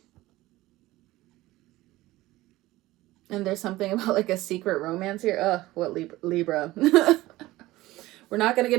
And there's something about like a secret romance here. Ugh, what Libra. We're not going to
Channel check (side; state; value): left; quieter; 17.8 dB